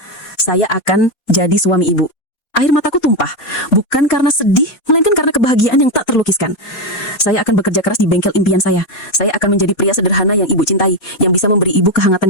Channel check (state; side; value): late; right; 4.2 ms